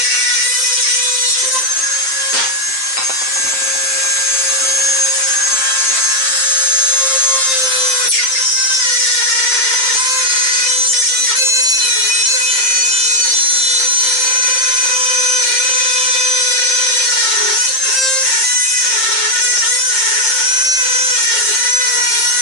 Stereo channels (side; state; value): right; late; 7.6 ms